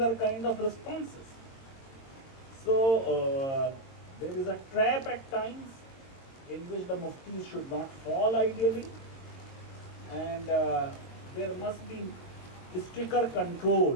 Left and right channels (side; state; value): right; late; 22 ms